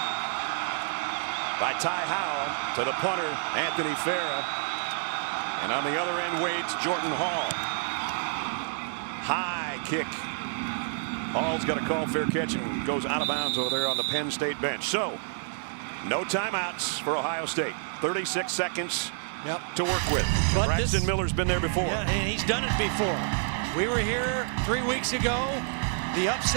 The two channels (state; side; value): silent; left; digital silence